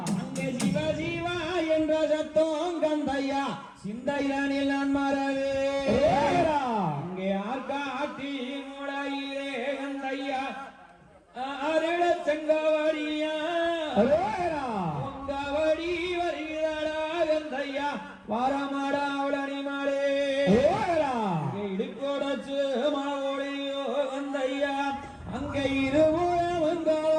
அங்கே சிவ சிவா என்ற சத்தம் கந்தையா சிந்தையனில் நான் மறவே அங்கே ஆர்காட்டி மூளையிலே கந்தையா அருள செங்கவடியா உங்கவடி வருகிறாடா கந்தையா வாரமாடா அவளனி மாடே இடுக்கோடச்சு மாவோடையோ கந்தையா அங்கே இருபுறம்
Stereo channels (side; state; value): both; identical; correlation 1.00